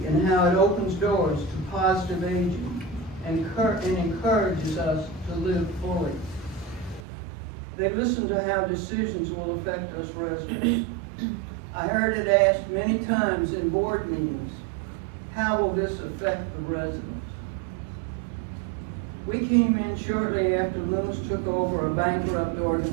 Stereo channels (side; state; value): left; drops out; at 7.0 s